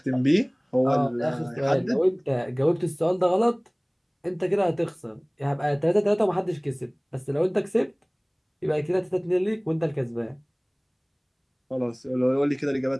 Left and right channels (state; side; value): identical; both; correlation 1.00